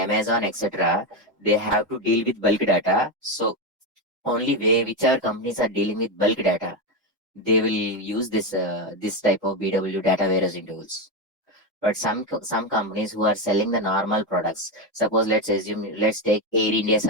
etc., they have to deal with bulk data. So only way whichever companies are dealing with bulk data, they will use this type of BW data warehousing tools. But some companies who are selling the normal products, suppose let's take Air India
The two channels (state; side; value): normal; both; correlation 0.11